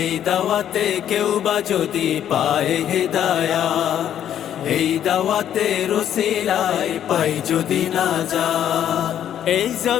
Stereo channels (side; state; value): right; quieter; 10.3 dB